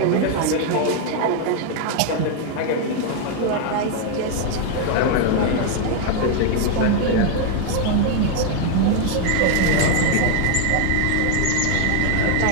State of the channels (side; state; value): both; different; correlation 0.00